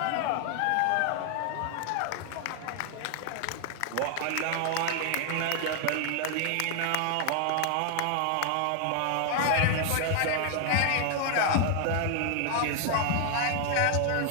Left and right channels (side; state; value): both; different; correlation 0.00